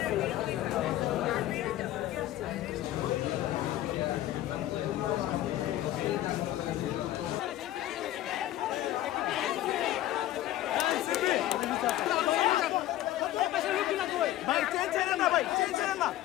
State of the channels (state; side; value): quieter; right; 14.1 dB